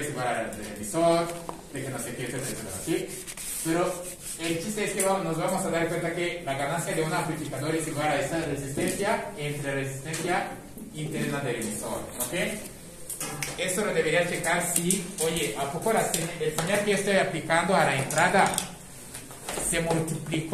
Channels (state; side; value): identical; both; correlation 1.00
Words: igual al del emisor, de que no sé qué, etcétera, ¿sí? Pero el chiste es que nos vamos a dar cuenta que la ganancia de un amplificador es igual a esta resistencia entre la resistencia interna del emisor, ¿ok? Esto lo debería checar si, oye, ¿a poco el señal que estoy aplicando a la entrada se